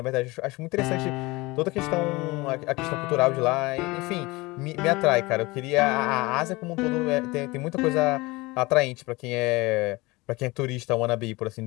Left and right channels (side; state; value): right; quieter; 22.7 dB